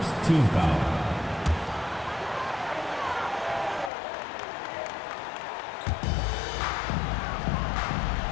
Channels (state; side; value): drops out; right; at 3.9 s